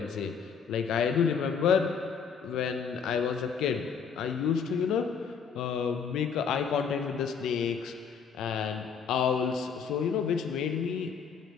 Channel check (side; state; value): right; quieter; 6.5 dB